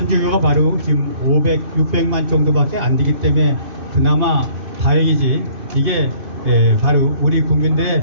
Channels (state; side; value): late; left; 2.6 ms